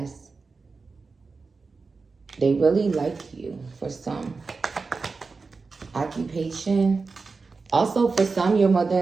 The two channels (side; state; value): left; quieter; 4.3 dB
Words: They really like you for some. Occupation. Also, for some, your